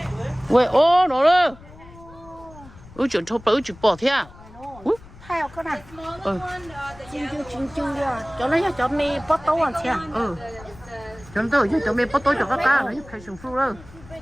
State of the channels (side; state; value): left; noise; rumble, 21 dB below the sound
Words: 喂, nó đó. Chuyện thô bự chuyện bỏ thế à? Hai cái này. Chinh rồi. Cho nó cho mì bắt tấu ăn thế. Cho nó cho mì bắt tấu cho các cá nó phải sùng phu đó.